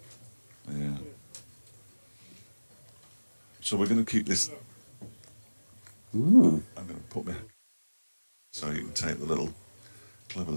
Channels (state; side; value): inverted; both; correlation -1.00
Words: Yeah. So we're going to keep this. I'm going to put me so you can take the clever